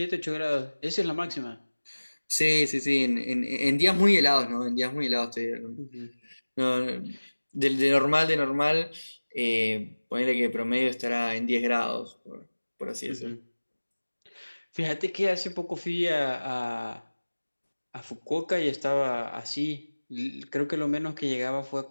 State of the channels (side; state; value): both; inverted; correlation -1.00